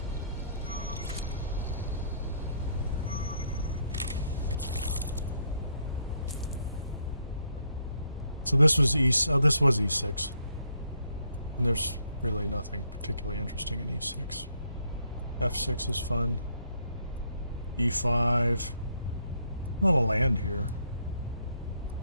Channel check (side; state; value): both; inverted; correlation -0.72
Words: So this was this was E6, and there's really nothing particularly interesting in E6. F6 is fun. E5, a lot of land here.